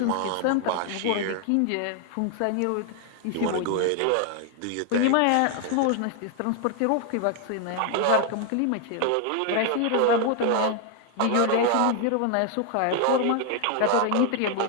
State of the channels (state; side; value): different; both; correlation 0.00